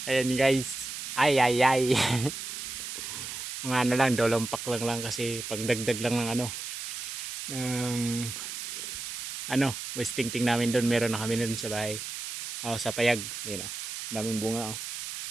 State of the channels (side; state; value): right; noise; hiss, 6 dB below the sound